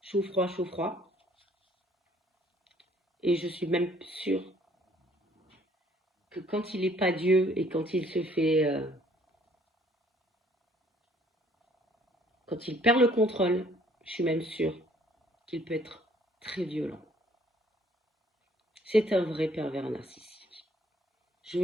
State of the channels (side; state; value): both; normal; correlation 0.61